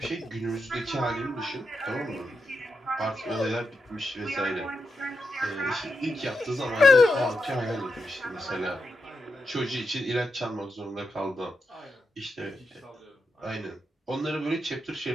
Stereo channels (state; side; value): normal; both; correlation 0.86